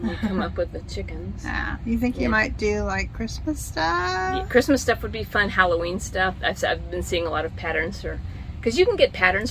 we come up with the chickens. Yeah, you think you might do like Christmas stuff? Yeah, Christmas stuff would be fun. Halloween stuff. I've been seeing a lot of patterns for. Because you can get patterns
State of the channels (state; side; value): identical; both; correlation 1.00